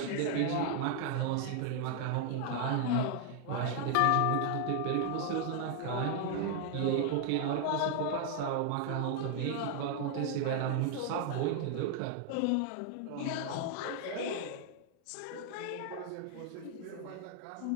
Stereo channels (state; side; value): different; both; correlation 0.00